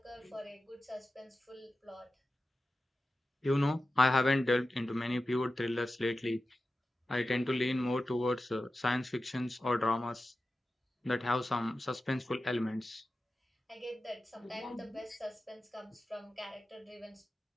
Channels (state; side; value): normal; both; correlation 0.93